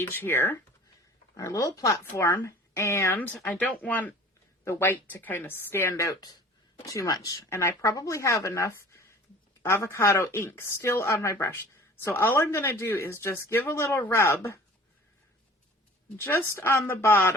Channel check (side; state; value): both; normal; correlation 0.46